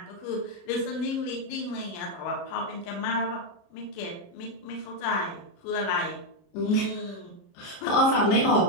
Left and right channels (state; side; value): late; right; 30 ms